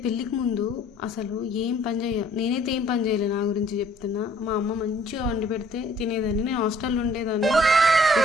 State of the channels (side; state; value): both; normal; correlation 0.58